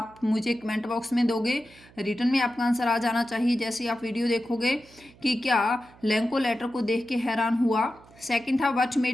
मुझे कमेंट बॉक्स में दोगे, रिटर्न में आपका आंसर आ जाना चाहिए जैसे ही आप वीडियो देखोगे कि क्या लेंको लेटर को देख के हैरान हुआ। सेकंड था व्हाट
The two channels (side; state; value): right; noise; hum, 25 dB below the sound